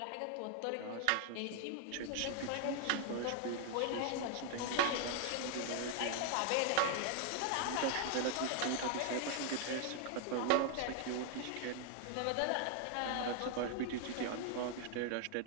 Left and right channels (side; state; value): both; different; correlation 0.00